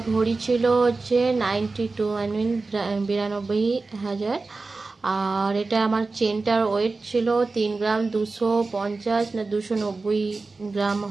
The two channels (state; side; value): quieter; left; 3.7 dB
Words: ভরি ছিল হচ্ছে 92 আই মিন 92,000 আর এটা আমার চেনটার ওয়েট ছিল 3 গ্রাম 250 না 290 গ্রাম